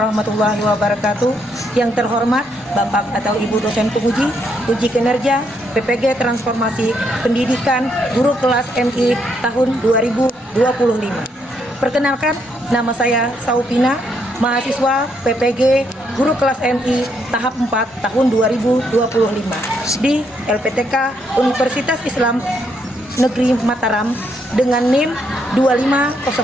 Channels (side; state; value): both; normal; correlation 0.75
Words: wabarakatuh. Yang terhormat Bapak atau Ibu dosen penguji uji kinerja PPG Transformasi Pendidikan Guru Kelas MI tahun 2025. Perkenalkan, nama saya Saupina, mahasiswa PPG Guru Kelas MI tahap 4 tahun 2025 di LPTK Universitas Islam Negeri Mataram dengan NIM